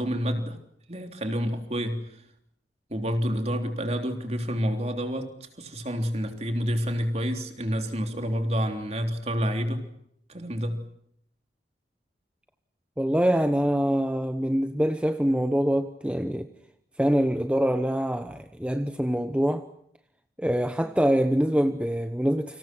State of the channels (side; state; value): both; normal; correlation 0.92